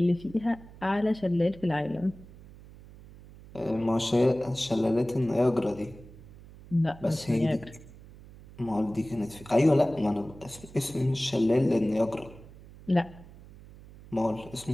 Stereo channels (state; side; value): noise; right; hum, 20 dB below the sound